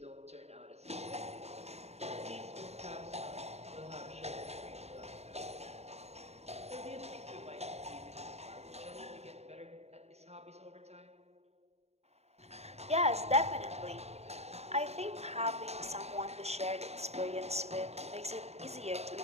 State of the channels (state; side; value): late; left; 0.31 ms